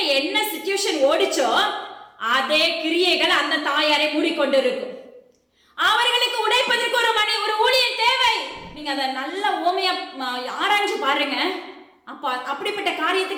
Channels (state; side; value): identical; both; correlation 1.00